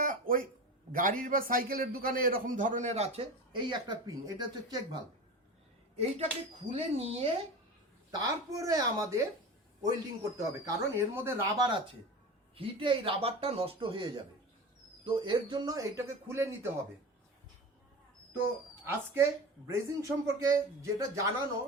ওই গাড়ির বা সাইকেলের দোকানে এরকম ধরনের আছে, এই একটা পিন, এটা হচ্ছে চেক ভাল্ব। এইটাকে খুলে নিয়ে তারপরে আমাদের ওয়েল্ডিং করতে হবে, কারণ এর মধ্যে রাবার আছে, হিটে এই রাবারটা নষ্ট হয়ে যাবে। তো এর জন্য এইটাকে খুলে নিতে হবে। তো আজকে ব্রেজিং সম্পর্কে যেটা জানানো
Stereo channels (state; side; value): normal; both; correlation 0.29